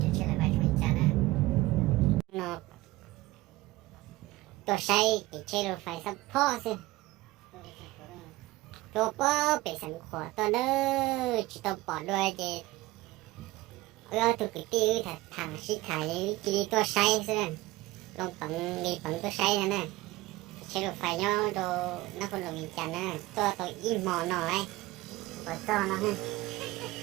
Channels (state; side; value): quieter; left; 19.0 dB